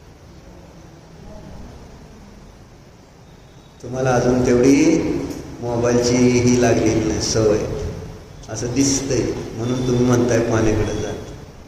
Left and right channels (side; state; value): both; identical; correlation 1.00